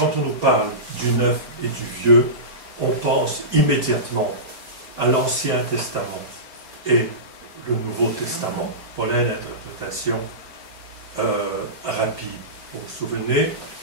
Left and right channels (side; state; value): left; late; 4.3 ms